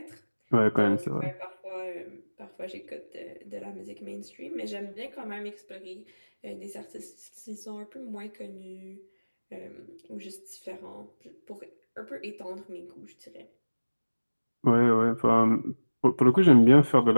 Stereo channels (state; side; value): inverted; both; correlation -1.00